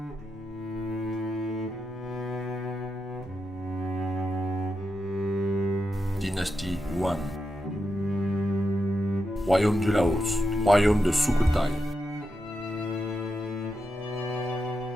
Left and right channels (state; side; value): normal; both; correlation 0.87